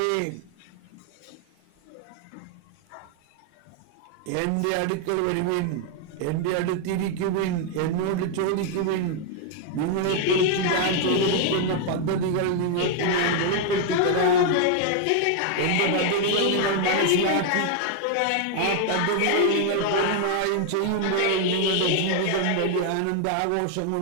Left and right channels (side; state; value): both; different; correlation 0.00